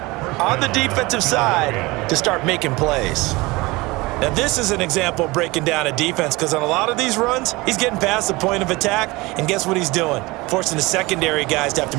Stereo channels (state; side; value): quieter; left; 22.4 dB